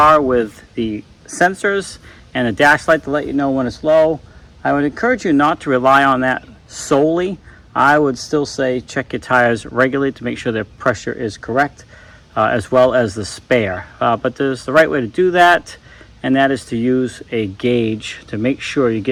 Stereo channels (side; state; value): both; identical; correlation 1.00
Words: with the sensors and a dash light to let you know when it's low, I would encourage you not to rely on that solely. I would still say check your tires regularly to make sure their pressure is correct, as well as the spare. But there's the right way to do that, and that is to use a gauge to make sure you're